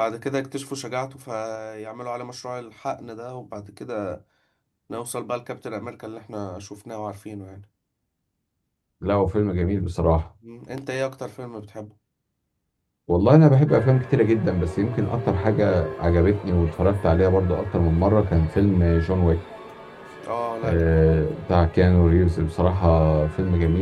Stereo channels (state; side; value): identical; both; correlation 1.00